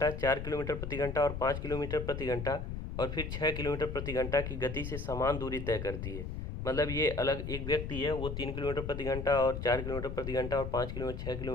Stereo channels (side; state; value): left; noise; rumble, 5 dB below the sound